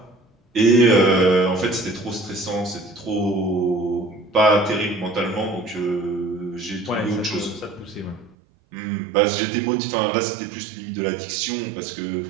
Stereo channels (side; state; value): left; drops out; at 8.3 s